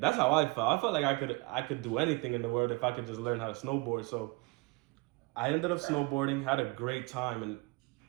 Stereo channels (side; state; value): left; quieter; 25.8 dB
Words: how I felt. I felt like I could do anything in the world if I could just learn how to snowboard. So I ended up snowboarding, had a great time, and